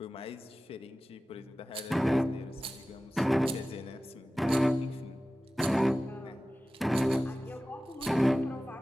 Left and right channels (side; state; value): both; normal; correlation 0.96